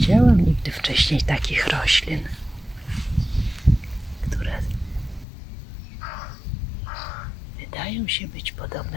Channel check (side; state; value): right; drops out; at 5.2 s